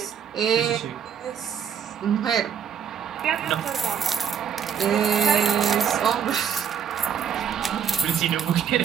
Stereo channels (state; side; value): quieter; left; 8.1 dB